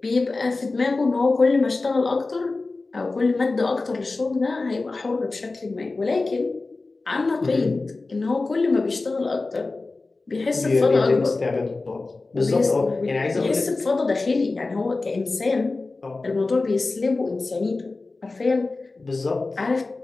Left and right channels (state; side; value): quieter; right; 3.5 dB